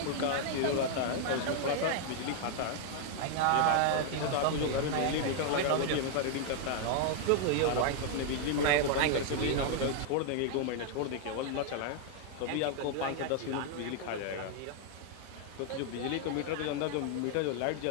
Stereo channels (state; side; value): different; both; correlation 0.00